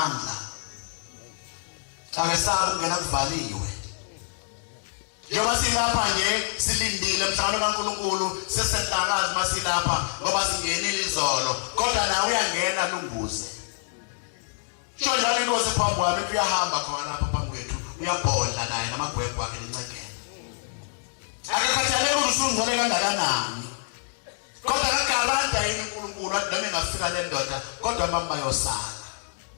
Akasaba ukungena kuvaliwe. Njengoba silapha nje silindile mhlawumbe kaNkulunkulu sesenhlakazi masilapha ngoba singenile izolo kodwa nawe uyangena lunguze. Sho njalo inkosi phambi kwami kuyahamba khona lapha phambi kwethu uyabhodla naye namagwegwe akhe lencekela. Akakhathalele ukuthi usungcwele kangakanani. Kodwa akagaranta yini uNkulunkulu athi noma engafika le ndoda kodwa mama bayosala.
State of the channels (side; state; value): right; silent; 60 dB below the other